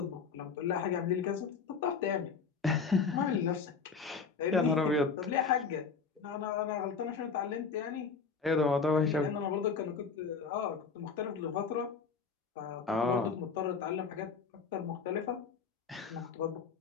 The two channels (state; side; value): quieter; right; 5.4 dB